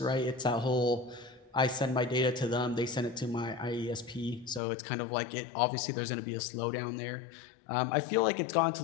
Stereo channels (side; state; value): right; drops out; at 4.6 s